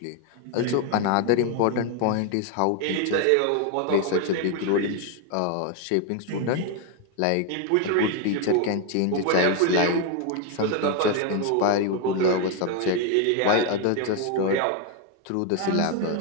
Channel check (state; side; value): different; both; correlation 0.01